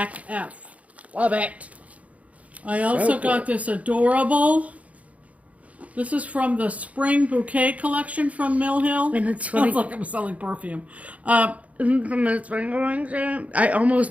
F. Love it. I also got this adorable... This is from the Spring Bouquet collection from Mill Hill. And it's funny. Sounds like I'm selling perfume. From the Spring Collection. I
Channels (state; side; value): late; left; 0.067 ms